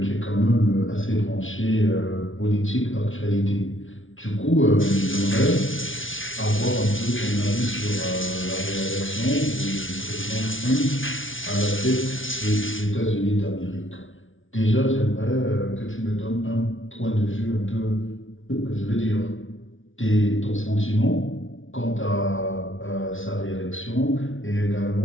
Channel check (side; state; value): right; late; 0.57 ms